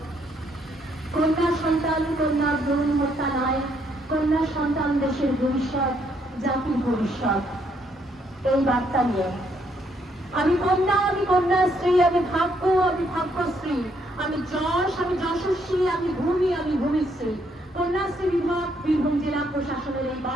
কন্যা সন্তান, কন্যা ভ্রূণ হত্যা নয়, কন্যা সন্তান দেশের ভবিষ্যৎ, জাতির ভবিষ্যৎ। এই বার্তা নিয়ে আমি কন্যাশ্রী, আমি ভাগ্যশ্রী, আমি যশ, আমি যশস্বী, আমি ভূমিশ্রী। কন্যাশ্রী বিভাগ বীরভূম জেলা প্রশাসনের এই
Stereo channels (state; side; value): normal; both; correlation 0.72